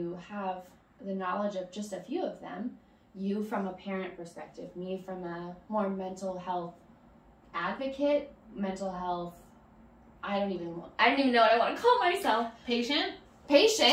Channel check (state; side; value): identical; both; correlation 1.00